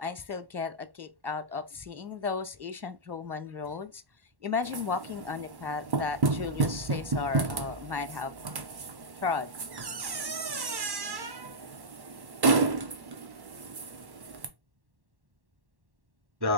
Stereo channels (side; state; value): left; late; 1.1 ms